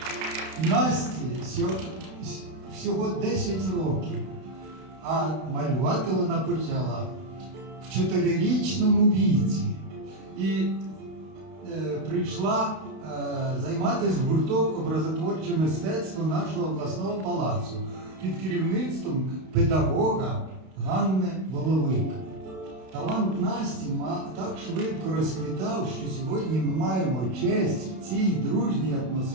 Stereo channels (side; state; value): left; late; 32 ms